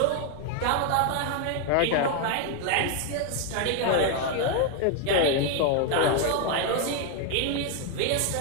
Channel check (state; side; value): different; both; correlation 0.01